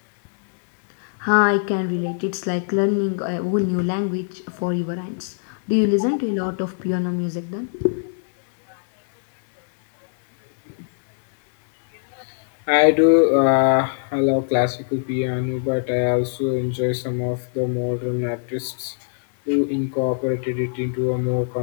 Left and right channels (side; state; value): right; silent; digital silence